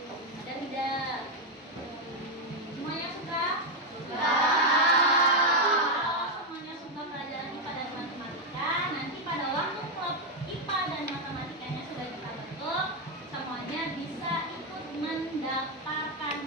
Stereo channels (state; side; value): normal; both; correlation 0.04